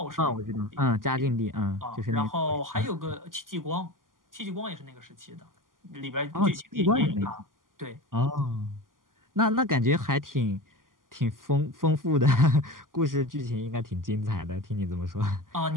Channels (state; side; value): late; left; 0.91 ms